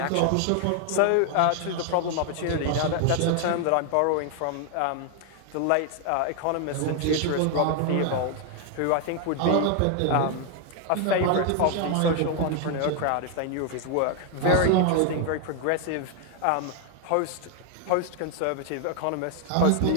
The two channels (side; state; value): both; different; correlation 0.00